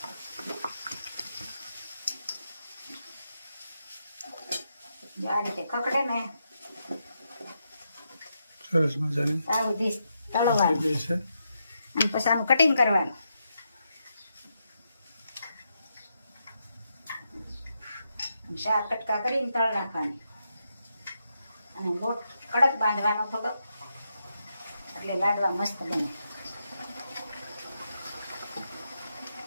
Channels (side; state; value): both; inverted; correlation -0.83